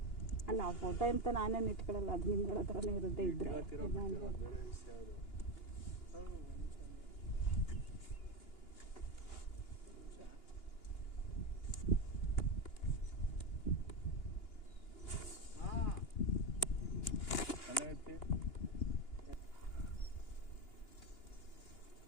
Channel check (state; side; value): late; right; 2.9 ms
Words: ಅಲ್ಲ, ಆ ಫೋಟೋ ಅಂತ ನಾನೇನು ಇಟ್ಕೊಳ್ಳಲ್ಲ, ಅದು ನಿಮ್ಗಳ ಹತ್ರನೇ ಇರುತ್ತೆ. ಇದ್ರೆ